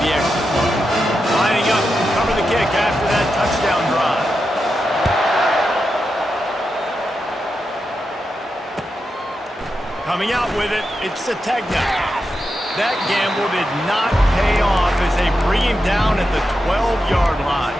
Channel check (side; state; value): both; normal; correlation 0.88